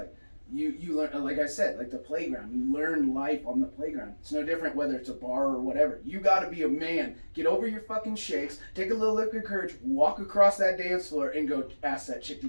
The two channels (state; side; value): inverted; both; correlation -1.00